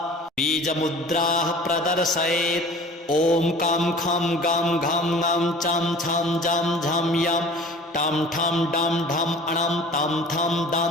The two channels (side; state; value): both; normal; correlation 0.44